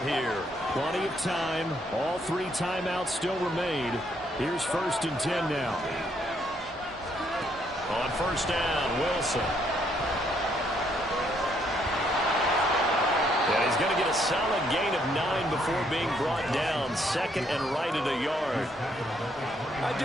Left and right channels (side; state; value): both; normal; correlation 0.71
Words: here. Plenty of time. All 3 timeouts still remain. Here's 1st and 10 now. On 1st down, Wilson. Yeah, he's going to get a solid gain of 9 before being brought down. 2nd and right at a yard. I